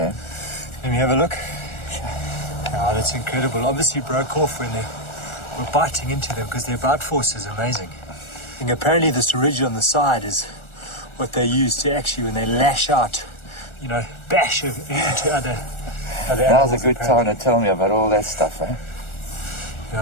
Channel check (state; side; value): late; right; 1.4 ms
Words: Let me have a look. Oh, that's incredible. Obviously broke off when they were biting into them, because their bite force is amazing. And apparently this ridge on the side is what they use to actually, when they lash out, you know, bash into other animals. Now's a good time to tell me about all that stuff, eh?